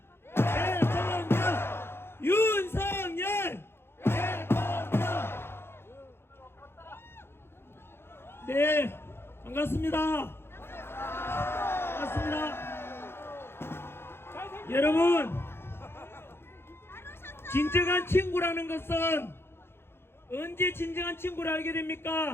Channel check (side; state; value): right; late; 0.11 ms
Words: 대통령, 윤석열 대통령. 네, 반갑습니다. 여러분, 진정한 친구라는 것은 언제 진정한 친구를 알게